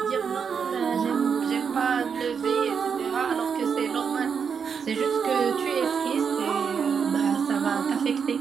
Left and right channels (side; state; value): left; quieter; 6.5 dB